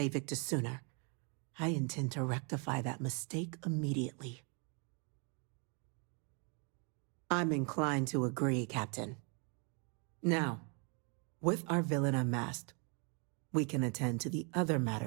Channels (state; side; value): quieter; left; 35.8 dB